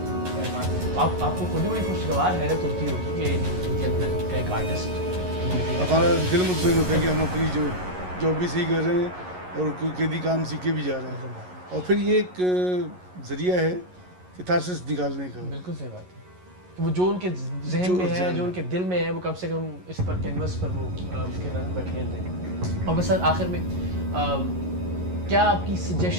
आपको खुद ही बड़ी खुशगवार हैरत होती होगी कि इनके अंदर का एक आर्टिस्ट। हमारा दिल मुतमईन होता है कि हम अपनी जो जॉब भी सही कर रहे हैं और कोई कैदी काम सीख के भी जा रहे हैं। और फिर ये एक ज़रिया है कैथारसिस निकालने का। बिल्कुल सही बात है कि वो जो उनके जहन में है, जो उनके दिल में है, वो कम से कम इस पर कैनवस पर वो उसके रंग बखेर दें। और बस आखिर में क्या आपकी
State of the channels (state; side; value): late; left; 11 ms